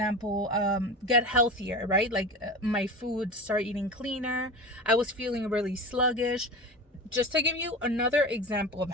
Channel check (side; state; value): both; normal; correlation 0.29